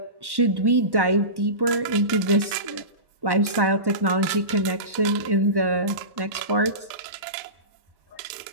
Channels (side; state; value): left; late; 1.1 ms